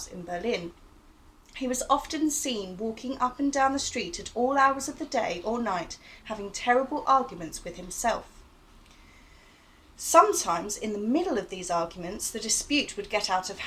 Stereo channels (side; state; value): both; identical; correlation 1.00